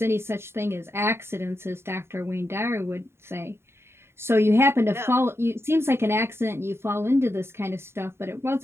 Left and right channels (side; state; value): left; late; 0.12 ms